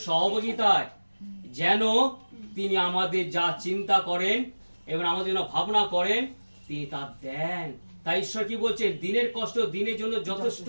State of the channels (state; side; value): inverted; both; correlation -1.00